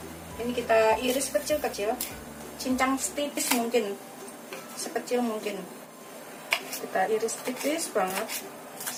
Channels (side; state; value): both; identical; correlation 1.00